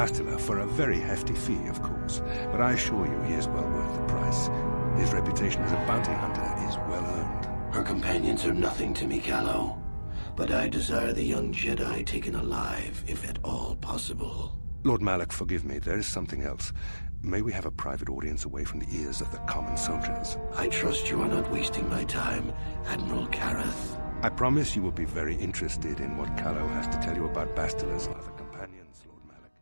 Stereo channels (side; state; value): both; inverted; correlation -1.00